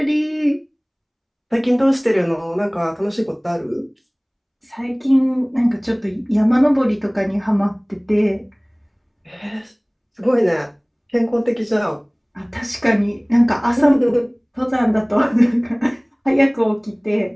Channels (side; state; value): both; identical; correlation 1.00